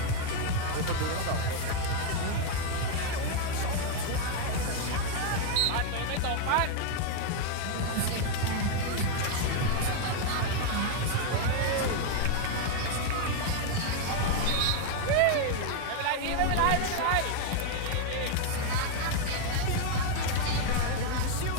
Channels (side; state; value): both; different; correlation 0.00